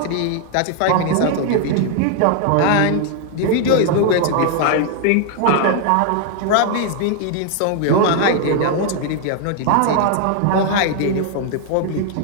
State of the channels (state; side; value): different; both; correlation 0.00